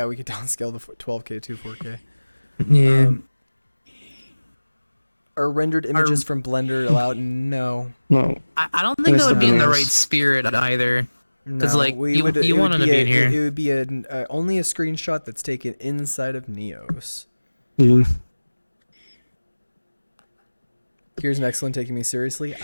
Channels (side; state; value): both; inverted; correlation -1.00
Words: we could downscale the 12K to 4K. Yeah. Are rendered images from Blender allowed? No. No. I don't think that would be in the right spirit either. Because No, like you want them to be in here. It would be only a screenshot that's taken inside of Neos. Yeah. Here's an excellent taking me seriously.